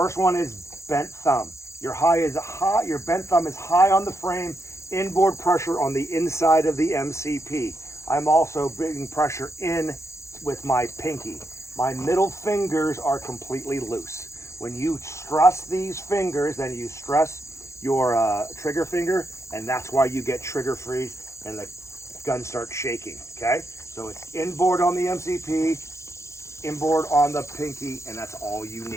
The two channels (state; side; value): late; right; 0.14 ms